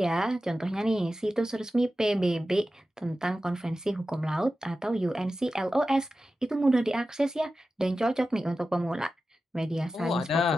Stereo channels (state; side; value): normal; both; correlation 0.93